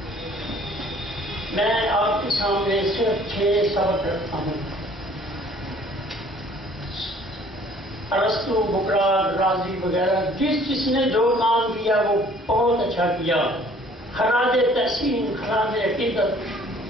میں آپ کے سامنے صرف 6 سبق رکھتا ہوں. ارسطو، بکرات، رازی وغیرہ جس نے جو کام کیا وہ بہت اچھا کیا. خراج تحسین، خراج عقیدت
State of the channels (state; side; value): normal; both; correlation 0.55